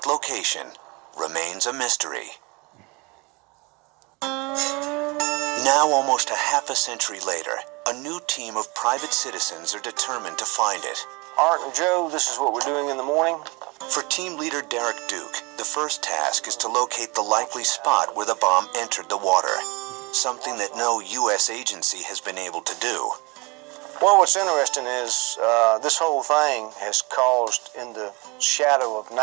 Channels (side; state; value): left; quieter; 27.0 dB